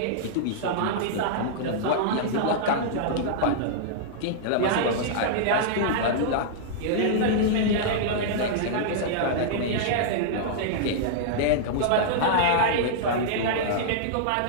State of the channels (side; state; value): both; different; correlation -0.02